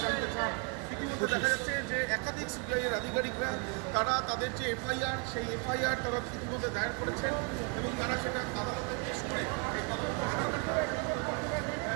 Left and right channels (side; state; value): left; quieter; 34.7 dB